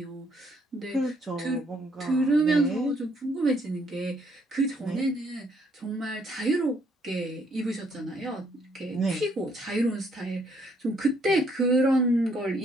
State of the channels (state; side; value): normal; both; correlation 0.68